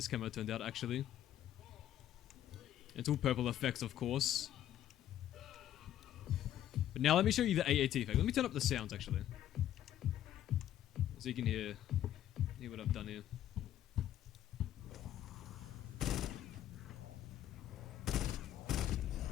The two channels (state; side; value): quieter; right; 11.8 dB